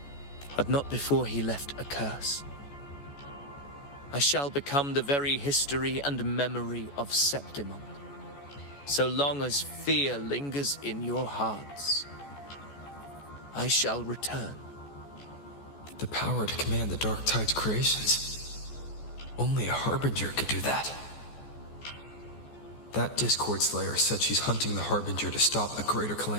But not before he left a curse. I shall become the very history and memory of Septimon. So long as fear lingers in your hearts, I shall return. The power to command the Dark Tide's creations. Only a Harbinger could do that. That Discord Slayer said she's hunting the Harbinger to stop a greater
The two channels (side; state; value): right; late; 14 ms